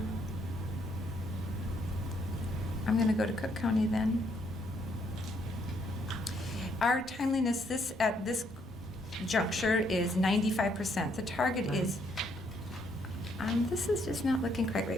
I'm going to go to Cook County then. Our timeliness at this juncture is 95%. The target is, this is just not looking quite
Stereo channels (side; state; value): both; normal; correlation 0.71